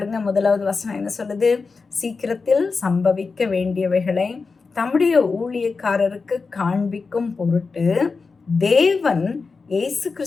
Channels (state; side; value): quieter; right; 4.5 dB